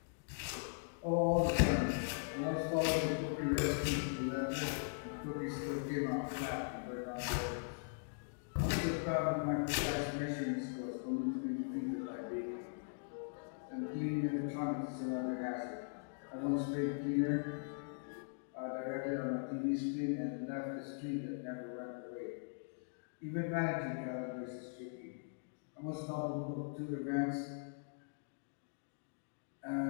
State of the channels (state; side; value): silent; right; digital silence